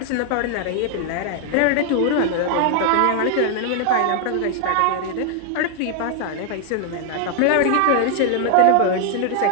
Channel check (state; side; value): different; both; correlation 0.00